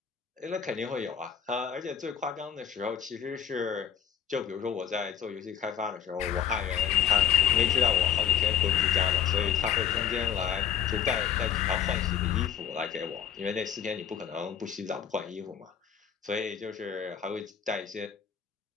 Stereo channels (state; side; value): quieter; right; 8.8 dB